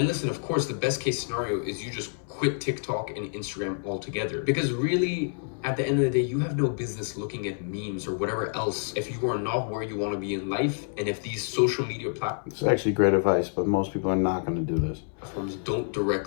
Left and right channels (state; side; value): silent; right; 59 dB below the other